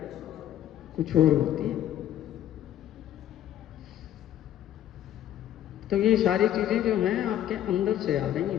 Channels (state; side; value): quieter; right; 11.6 dB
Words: कुछ और होती है। तो ये सारी चीजें जो हैं आपके अंदर से आ रही